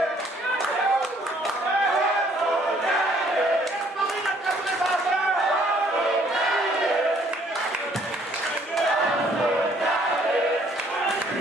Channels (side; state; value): both; normal; correlation 0.62